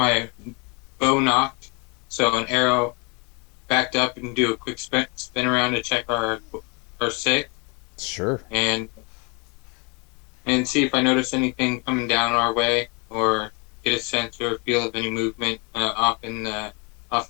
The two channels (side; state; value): right; quieter; 32.0 dB